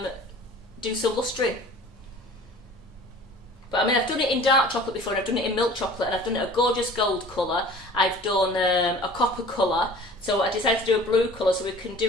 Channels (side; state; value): both; normal; correlation 0.45